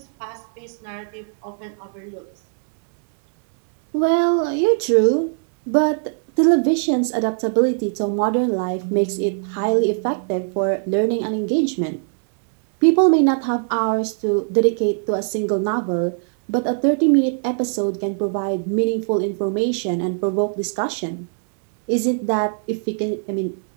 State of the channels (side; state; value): left; silent; digital silence